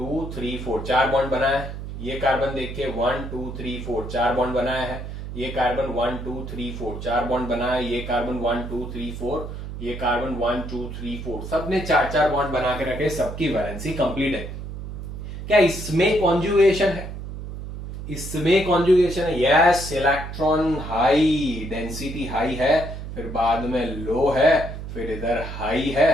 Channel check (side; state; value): right; noise; hum, 8 dB below the sound